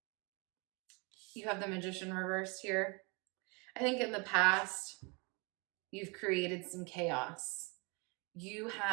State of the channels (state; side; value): quieter; left; 30.8 dB